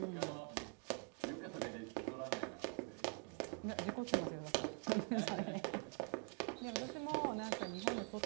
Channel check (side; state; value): left; quieter; 35.0 dB